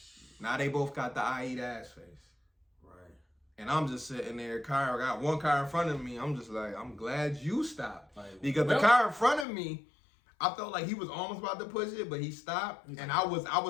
Now they both got the I eat ass face. Right. And I'm just sitting there, I got one car in front of me. I'm just like, I'm glad you stopped. Because the car in front of me, I felt like he was almost about to push it, but he stopped. And I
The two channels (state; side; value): drops out; right; at 9.5 s